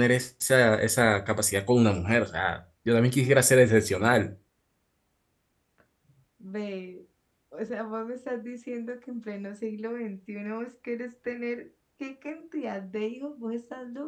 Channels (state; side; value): identical; both; correlation 1.00